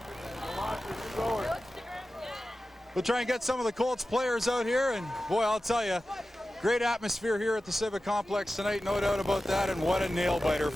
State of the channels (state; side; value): normal; both; correlation 0.94